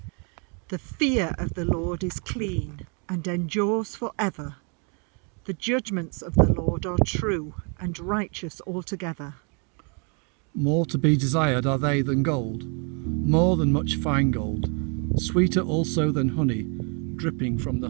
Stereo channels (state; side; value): quieter; left; 37.4 dB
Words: The fear of the Lord is clean, and endures forever. The judgments of the Lord are true, and righteous altogether. More to be desired are they than gold, more than much fine gold, sweeter also than honey, dripping from the